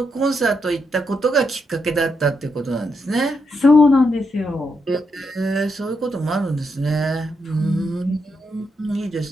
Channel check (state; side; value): normal; both; correlation 0.81